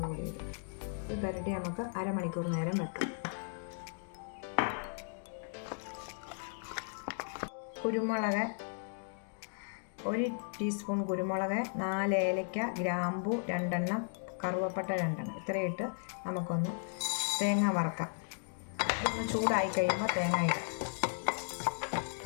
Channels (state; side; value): silent; right; digital silence